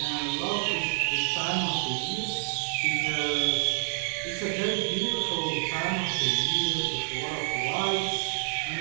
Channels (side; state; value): left; silent; digital silence